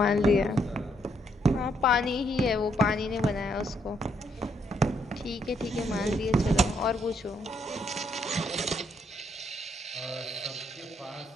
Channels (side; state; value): both; normal; correlation 0.73